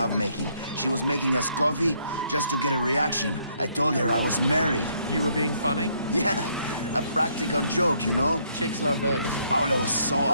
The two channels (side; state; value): both; inverted; correlation -0.69